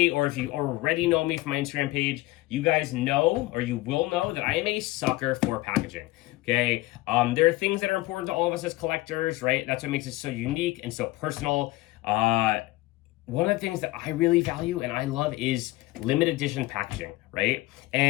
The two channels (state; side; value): quieter; right; 18.9 dB